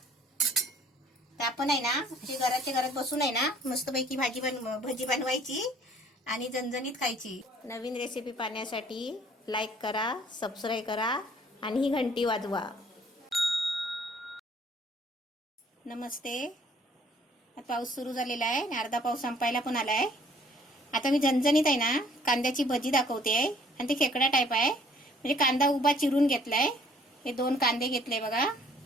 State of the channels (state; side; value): normal; both; correlation 0.58